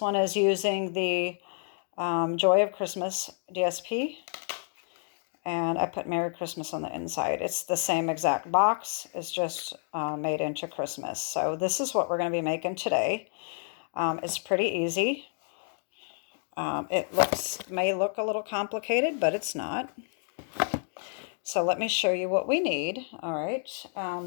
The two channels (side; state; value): right; silent; 58 dB below the other